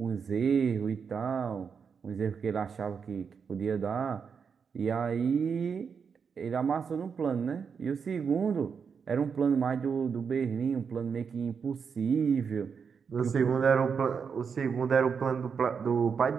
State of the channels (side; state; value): left; quieter; 6.2 dB